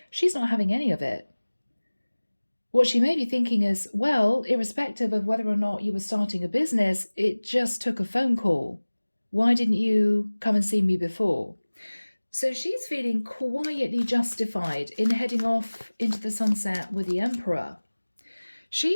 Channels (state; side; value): inverted; both; correlation -1.00